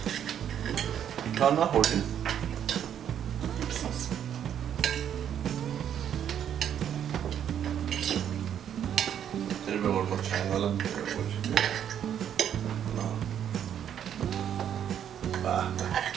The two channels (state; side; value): quieter; left; 9.4 dB